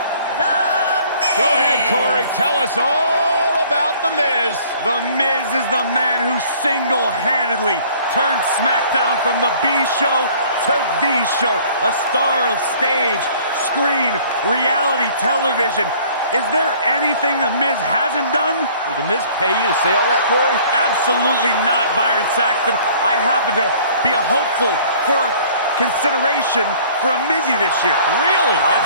The Miz. Go ahead, Corey. Tell us all about The Miz. The Miz is the man who single-handedly turned SmackDown from the B show to the show. A star of stage, screen, reality television. Is there anything The Miz hasn't done? Did The Miz pay you to say all that, Corey? Absolutely not, Byron Saxton. I happen to be a hopeful for consideration for a Mizzy this year. Really?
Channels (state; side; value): inverted; both; correlation -0.53